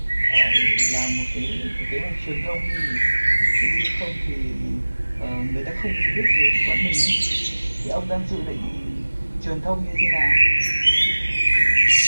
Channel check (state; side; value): inverted; both; correlation -1.00